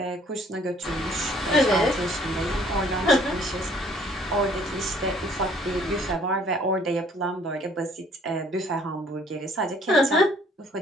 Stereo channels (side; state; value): both; normal; correlation 0.59